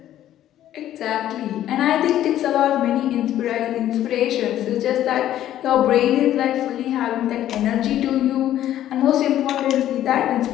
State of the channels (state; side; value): quieter; right; 12.2 dB